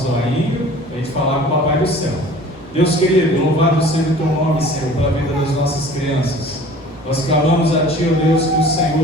zoinho para a gente falar com o Papai do Céu. Deus querido, louvado seja o Teu nome, Senhor, pela vida das nossas crianças. Nós clamamos a Ti, ó Deus, que o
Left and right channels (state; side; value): normal; both; correlation 0.46